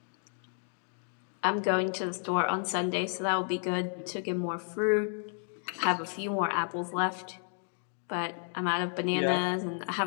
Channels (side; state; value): right; silent; 57 dB below the other